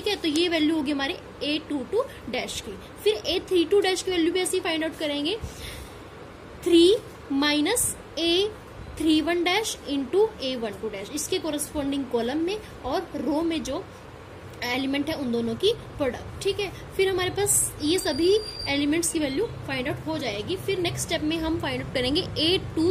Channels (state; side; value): identical; both; correlation 1.00